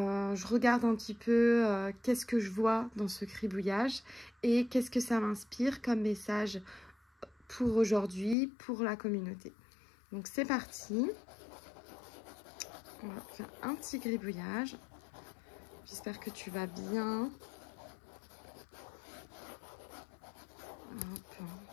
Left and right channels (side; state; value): right; drops out; at 8.3 s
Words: regarde un petit peu qu'est-ce que je vois dans ce cribouillage et qu'est-ce que ça m'inspire comme message pour aujourd'hui, pour la communauté. Donc c'est parti. On va faire un petit gribouillage. J'espère que tu vas bien. Hop.